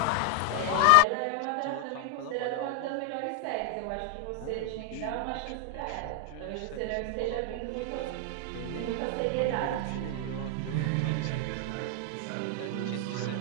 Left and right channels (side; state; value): both; different; correlation 0.00